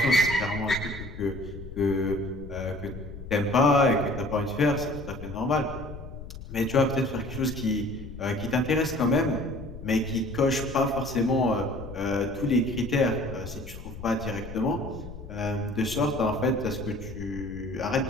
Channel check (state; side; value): noise; left; rumble, 12 dB below the sound